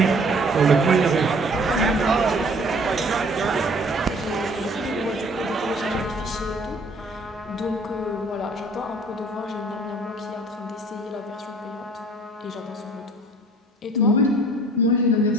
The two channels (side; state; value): both; normal; correlation 0.53